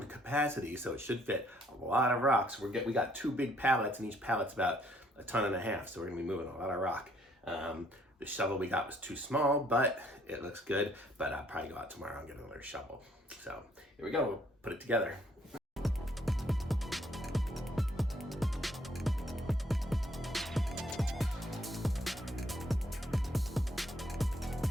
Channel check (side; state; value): both; normal; correlation 0.66